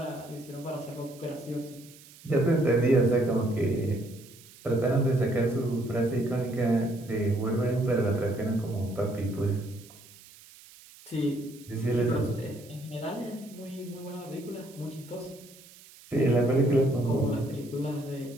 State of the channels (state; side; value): noise; right; hiss, 22 dB below the sound